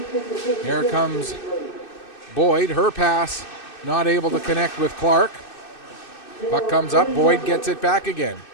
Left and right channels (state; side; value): late; right; 2.6 ms